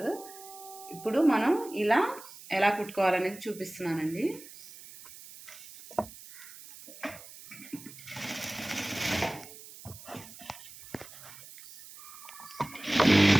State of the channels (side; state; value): right; noise; hiss, 17 dB below the sound